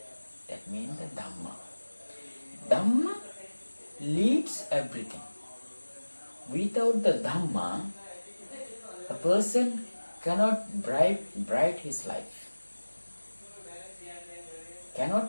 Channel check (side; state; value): both; inverted; correlation -1.00